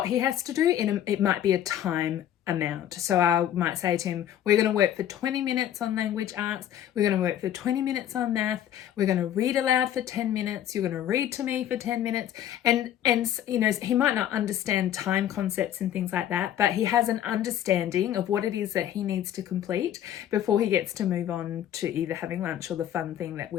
he has to do, it might be a time amount. So I might say to him, we're going to work for 20 minutes on language arts, we're going to work for 20 minutes on math, we're going to read aloud for 10 minutes, you're going to read to me for 10 minutes. And he might not understand time concepts and things like that, but he has an understanding of what it is that he needs to complete before he gets to move on to either having lunch or the fun thing that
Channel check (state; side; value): quieter; right; 11.0 dB